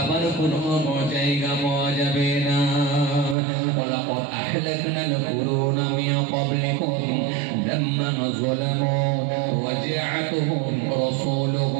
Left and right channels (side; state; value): left; drops out; at 3.4 s